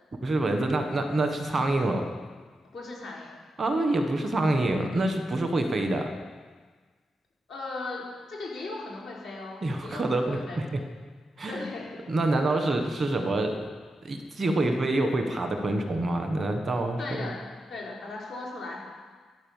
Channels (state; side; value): normal; both; correlation 0.88